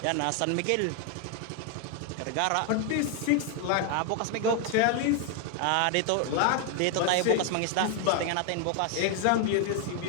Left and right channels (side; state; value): both; different; correlation 0.01